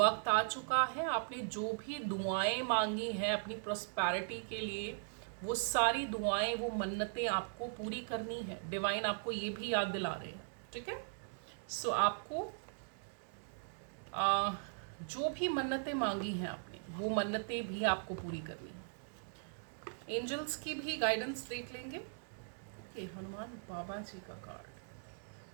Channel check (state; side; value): silent; left; digital silence